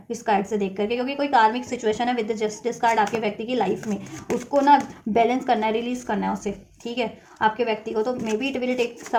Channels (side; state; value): both; identical; correlation 1.00